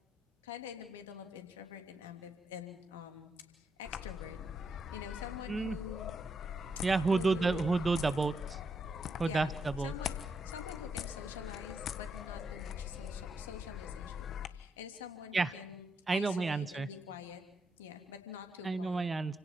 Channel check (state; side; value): normal; both; correlation 0.80